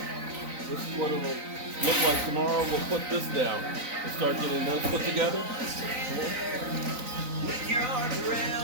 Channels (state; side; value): late; left; 3.9 ms